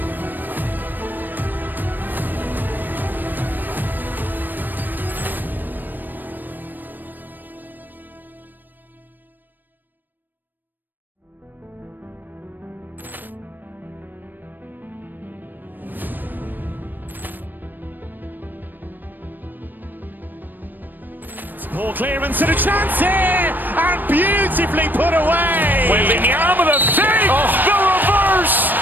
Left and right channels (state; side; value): late; left; 0.090 ms